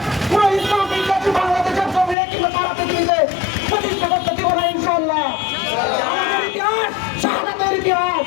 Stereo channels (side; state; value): right; drops out; at 2.1 s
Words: পুরো ইসলাম বিদ্বেষী বাংলাদেশের জমিনে কিংবা সারা পৃথিবীতে প্রতিষ্ঠা করতে দিব না ইনশাআল্লাহ। আমাদের ইতিহাস শাহাদাতের ইতিহাস,